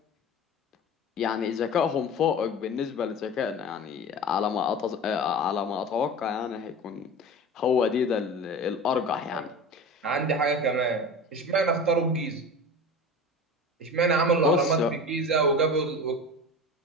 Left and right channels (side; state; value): both; normal; correlation 0.32